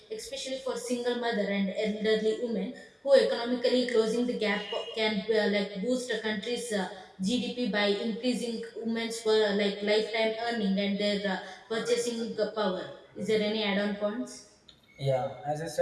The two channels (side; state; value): both; identical; correlation 1.00